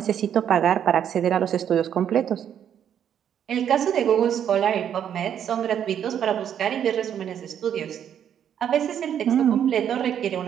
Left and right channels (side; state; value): left; quieter; 9.2 dB